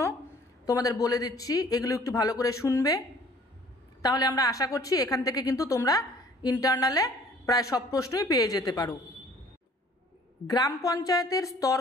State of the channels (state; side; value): normal; both; correlation 0.54